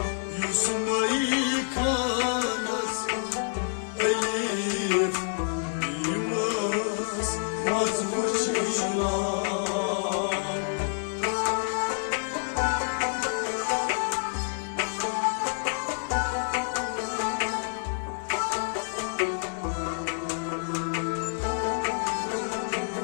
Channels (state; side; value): silent; right; 56 dB below the other